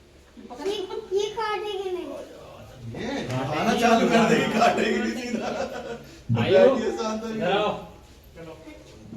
काटेगी नहीं। ये खाना चालू कर देगी, काटेगी नहीं सीधा। आयो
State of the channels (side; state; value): both; identical; correlation 1.00